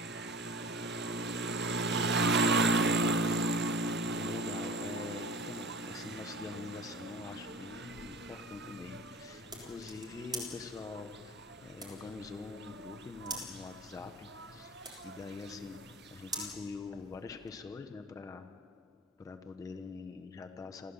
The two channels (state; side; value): normal; both; correlation 0.39